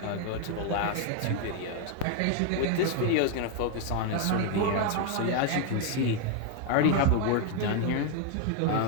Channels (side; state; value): both; different; correlation 0.00